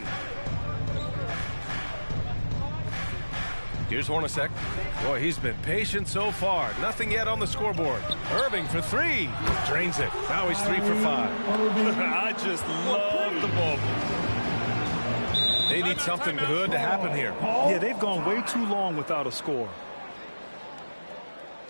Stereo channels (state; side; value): inverted; both; correlation -1.00